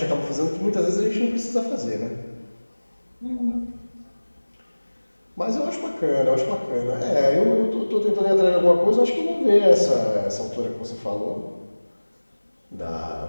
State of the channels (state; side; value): inverted; both; correlation -1.00